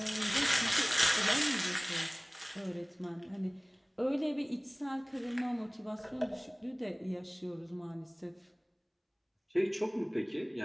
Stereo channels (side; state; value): both; identical; correlation 1.00